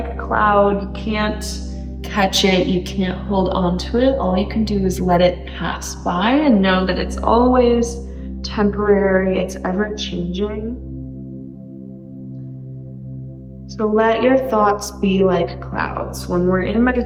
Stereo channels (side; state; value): both; identical; correlation 1.00